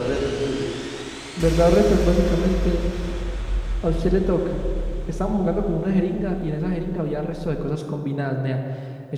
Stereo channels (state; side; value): identical; both; correlation 1.00